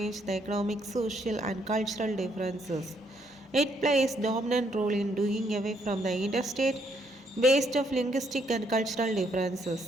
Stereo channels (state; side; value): normal; both; correlation 0.71